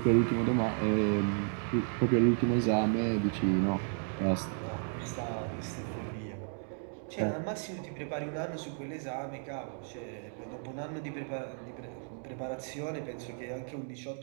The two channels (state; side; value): silent; left; 55 dB below the other